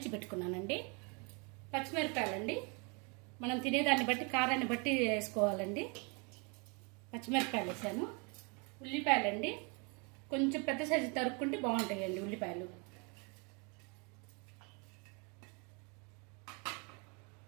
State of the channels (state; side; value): quieter; left; 32.8 dB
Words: పెట్టుకున్నానండి. పచ్చిమిరపకాయలండి, మనం తినేదాన్ని బట్టి కారాన్ని బట్టి వేసుకోవాలండి. పచ్చిమిరపకాయలు వేసాను. ఉల్లిపాయలండి, కొంచెం పెద్ద సైజు తరుక్కుంటే బాగుంటాయండి ఉల్లిపాయలు.